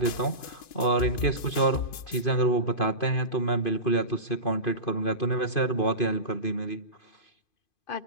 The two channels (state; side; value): late; right; 2.5 ms